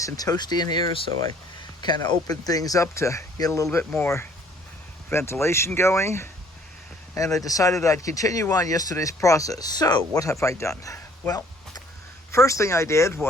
and toasty in here, so I kind of opened things up to get a little bit more ventilation going, and I decided I'd continue on yesterday's process. So what have I done? Well, first thing I did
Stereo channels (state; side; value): normal; both; correlation 0.59